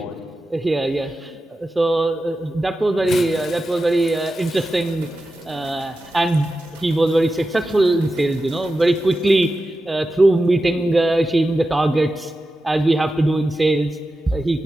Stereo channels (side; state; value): both; normal; correlation 0.92